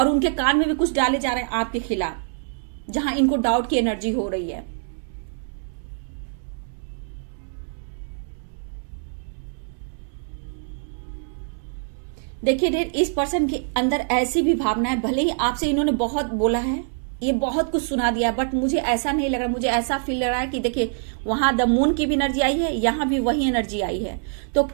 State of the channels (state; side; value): silent; left; 62 dB below the other